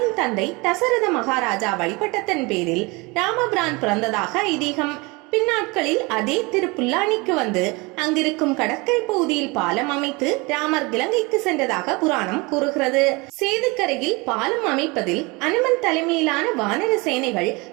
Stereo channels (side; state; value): left; quieter; 25.9 dB